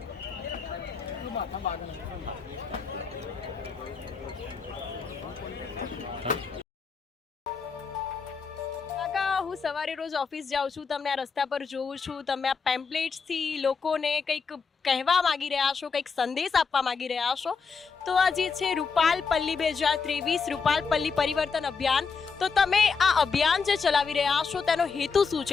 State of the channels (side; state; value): right; quieter; 5.3 dB